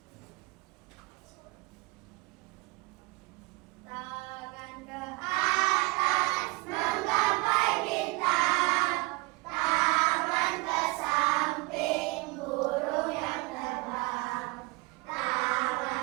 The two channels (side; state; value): left; quieter; 25.7 dB